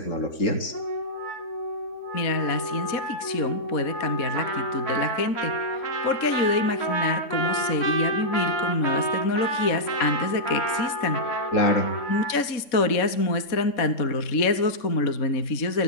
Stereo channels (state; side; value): late; right; 3.6 ms